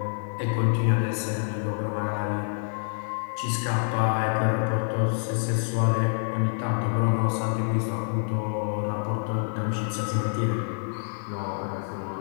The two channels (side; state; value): right; silent; 60 dB below the other